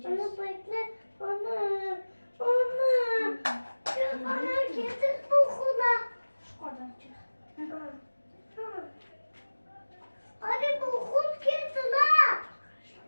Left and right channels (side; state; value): both; inverted; correlation -1.00